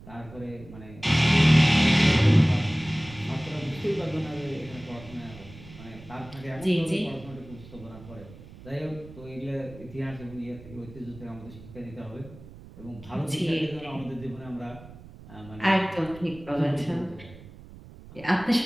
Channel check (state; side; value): noise; right; rumble, 18 dB below the sound